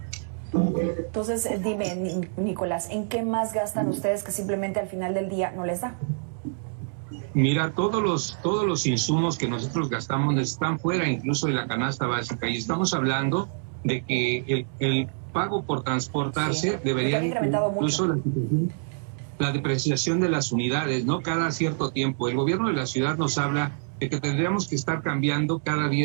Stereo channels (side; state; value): left; silent; digital silence